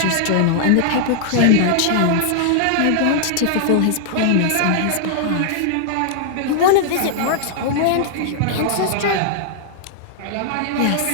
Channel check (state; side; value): different; both; correlation -0.01